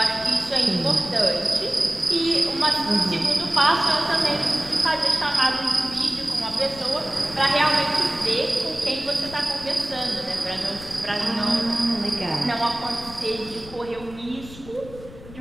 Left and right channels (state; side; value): noise; left; rumble, 17 dB below the sound